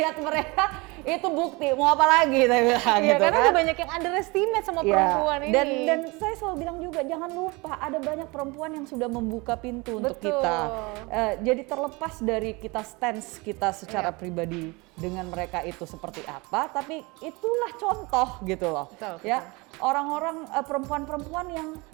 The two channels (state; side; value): quieter; left; 25.8 dB